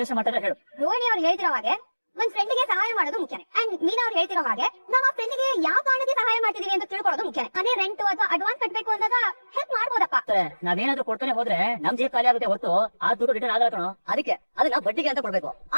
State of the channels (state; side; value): inverted; both; correlation -1.00